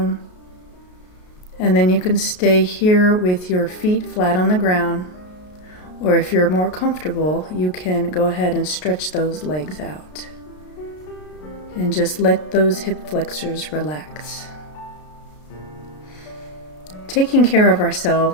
And then you can stay here with your feet flat on the ground, or if you're more comfortable, you can go ahead and stretch those legs out. And just let those hip flexors relax. Taking care of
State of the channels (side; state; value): right; late; 33 ms